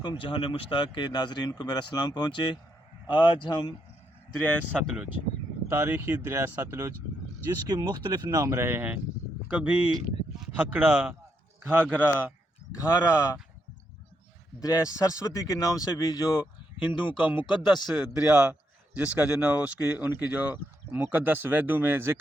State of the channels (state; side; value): normal; both; correlation 0.79